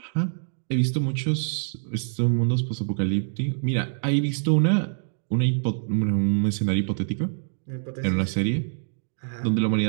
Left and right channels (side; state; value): left; silent; digital silence